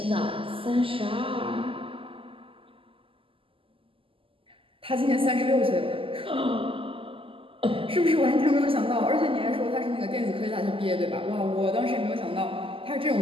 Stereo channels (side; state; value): left; late; 0.26 ms